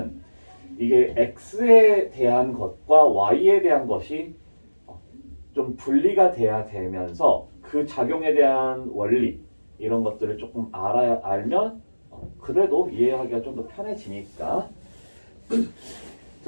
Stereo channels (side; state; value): both; inverted; correlation -1.00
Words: 이게 X에 대한 것과 Y에 대한 것이 좀 분리가 돼야 되면서 그 작용에 대한 원리 이런 것들을 조금 알면 그래도 이해하기가 좀 더 편해지니까.